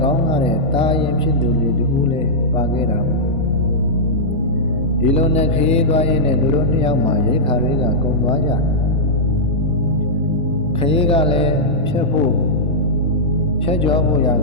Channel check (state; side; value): normal; both; correlation -0.10